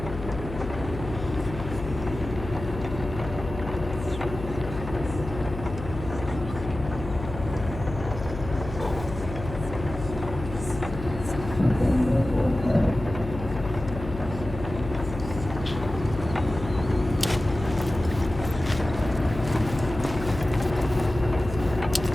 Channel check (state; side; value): noise; left; hum, 9 dB below the sound